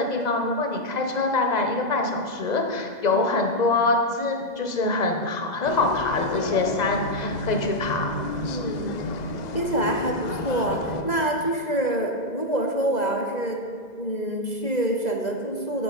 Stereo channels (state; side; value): late; right; 2.0 ms